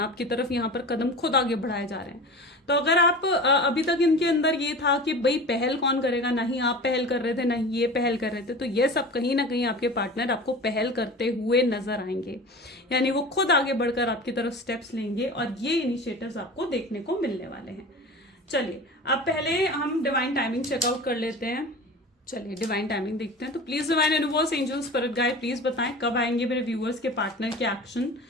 आपकी तरफ, यहाँ पर कदम खुद आगे बढ़ाए जा रहे हैं। तो अगर आप अभी तक इनके अंदर ये था कि भाई पहल कौन करेगा, ना ही आप पहल कर रहे थे ना ही ये पहल कर रहे थे, तो ये सब कहीं ना कहीं आपके पार्टनर आपको पहल करते हुए नजर आएंगे, यानी वो खुद आगे बढ़कर आपकी तरफ स्टेप्स लेंगे और ये इनिशिएटिव्स आपको देखने को मिलने वाले हैं। चलिए अब पहले हम डिवाइन टाइमिंग चेकआउट कर लेते हैं। चलिए डिवाइन टाइमिंग देखते हैं। तो please divine universe, angels, spirit guide, please बताएं कब आएंगे मेरे व्यूअर्स के पार्टनर के एक्शन।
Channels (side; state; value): both; normal; correlation 0.35